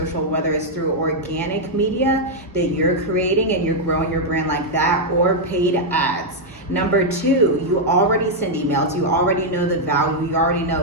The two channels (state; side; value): normal; both; correlation -0.02